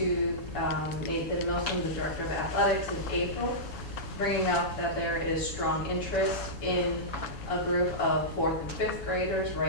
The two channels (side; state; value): right; late; 7.1 ms